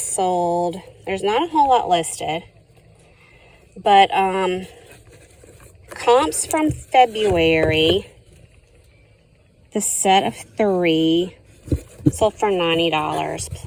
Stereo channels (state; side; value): identical; both; correlation 1.00